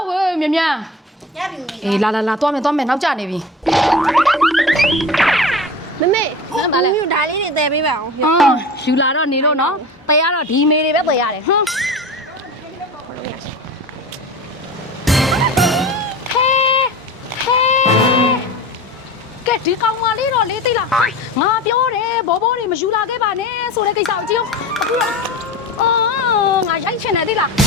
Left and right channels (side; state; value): both; normal; correlation 0.33